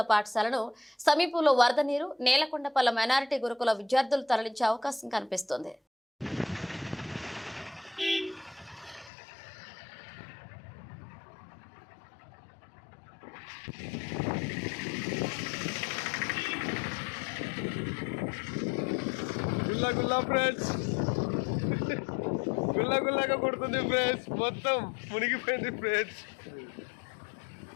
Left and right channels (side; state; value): right; drops out; at 9.1 s